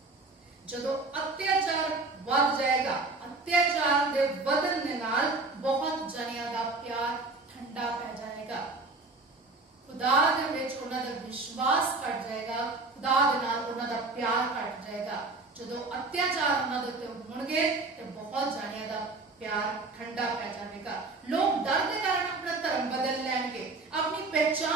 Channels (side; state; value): left; quieter; 3.5 dB